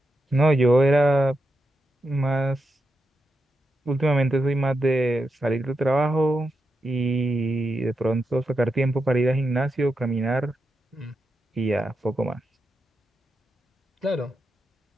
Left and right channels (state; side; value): normal; both; correlation 0.87